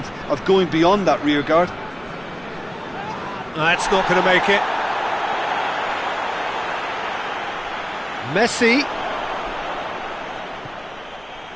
going beyond that rear guard. That's not going to make it. Messi.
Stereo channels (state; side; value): noise; left; rumble, 27 dB below the sound